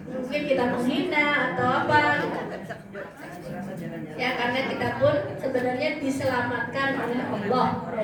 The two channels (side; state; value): both; identical; correlation 1.00